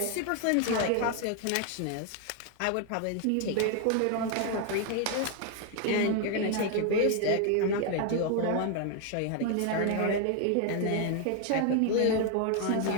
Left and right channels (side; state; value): both; different; correlation 0.01